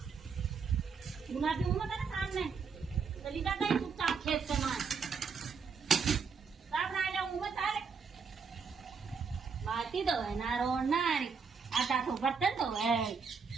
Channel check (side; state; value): left; quieter; 5.6 dB